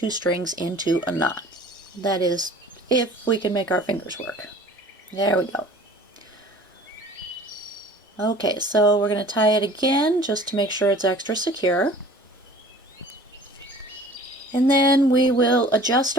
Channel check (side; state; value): both; normal; correlation 0.47